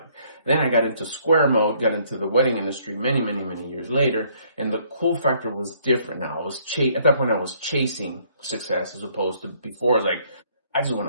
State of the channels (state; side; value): inverted; both; correlation -0.64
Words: Then I got into square mode, got into the wedding industry many years later, and the cool factor was different now. At that point I was chasing success as opposed to before. I was like, I just